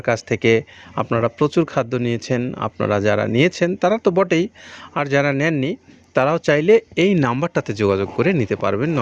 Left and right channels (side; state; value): both; identical; correlation 1.00